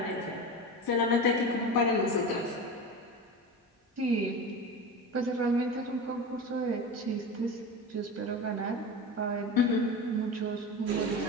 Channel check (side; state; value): both; normal; correlation 0.27